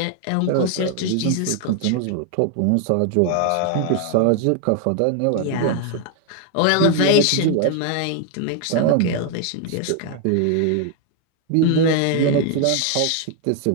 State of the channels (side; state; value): both; different; correlation 0.00